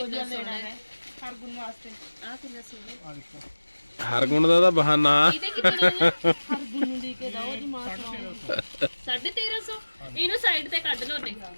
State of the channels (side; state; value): both; inverted; correlation -1.00